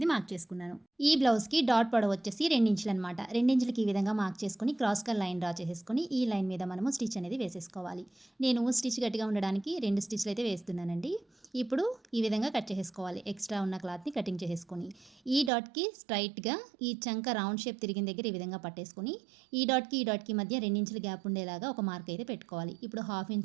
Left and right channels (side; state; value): left; drops out; at 15.5 s